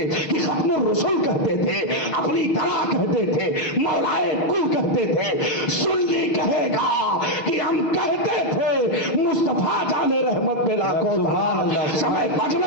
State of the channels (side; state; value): right; late; 6.3 ms